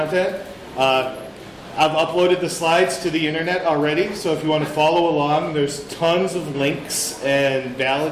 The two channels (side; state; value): both; identical; correlation 1.00